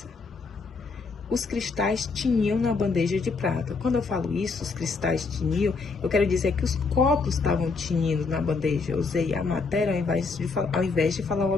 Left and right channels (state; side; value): quieter; right; 4.4 dB